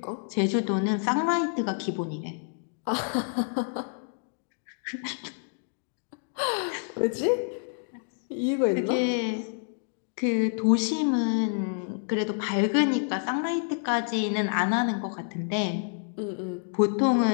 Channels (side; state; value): right; silent; 56 dB below the other